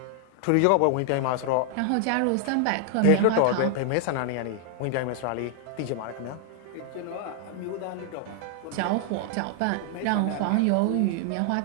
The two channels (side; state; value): both; different; correlation 0.00